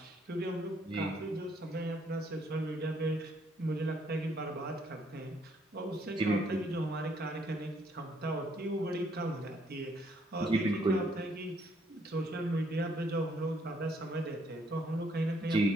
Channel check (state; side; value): normal; both; correlation 0.69